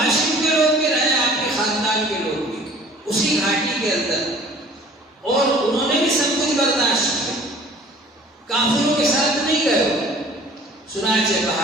کے لوگ بھی رہے, آپ کے خاندان کے لوگ بھی اسی گھاٹی کے اندر, اور انہوں نے بھی سب کچھ برداشت کیا, کافروں کے ساتھ نہیں گئے. چنانچہ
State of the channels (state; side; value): normal; both; correlation 0.50